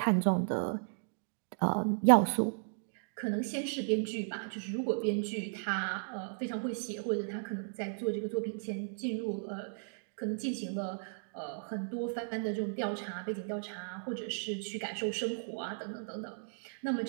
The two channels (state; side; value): silent; left; digital silence